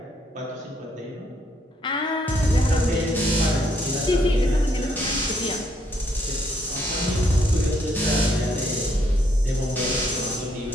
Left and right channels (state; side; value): normal; both; correlation 0.71